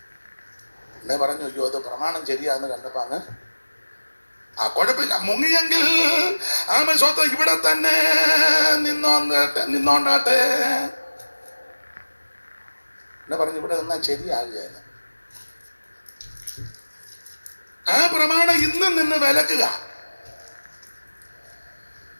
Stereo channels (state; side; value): inverted; both; correlation -1.00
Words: എന്നെ പറഞ്ഞു അയ്യോ അത് പ്രമാണം ശരിയാന്ന് കണ്ടപ്പോ അങ്ങ് കുഴപ്പമില്ല, മുങ്ങിയെങ്കിൽ ആമ സ്വത്ത് ഇവിടെ തന്നെ നിന്നോണ്ടാട്ടെ എന്നെ പറഞ്ഞു. ഇവിടെ നിന്നാ ശരിയാകുകയല്ല. ആ പ്രമാണം ഇന്നും നിന്ന് വിലക്കുക.